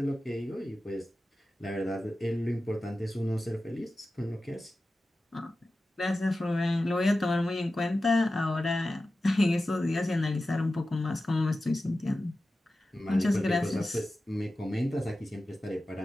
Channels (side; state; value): both; normal; correlation 0.94